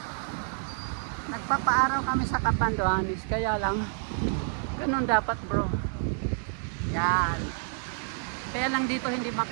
Nagpapaaraw kami sa Catanduanes, kaya lang ganun dapat bro. Yan. Kaya lang dito hindi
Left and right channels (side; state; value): left; silent; 58 dB below the other